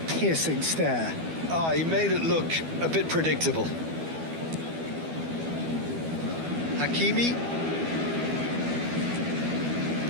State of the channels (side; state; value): left; late; 12 ms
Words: piercing stare. He made it look a bit predictable. Hakimi.